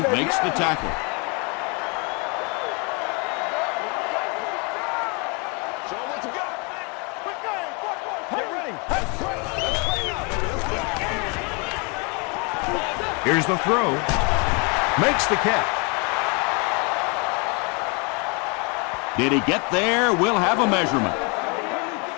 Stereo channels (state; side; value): quieter; right; 32.5 dB